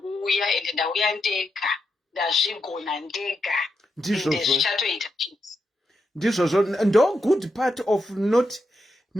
ende ndauya ndega ndazvigona ndega ende zvichatoita chete. Ndizvozvo ndo good part of not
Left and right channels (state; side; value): normal; both; correlation 0.85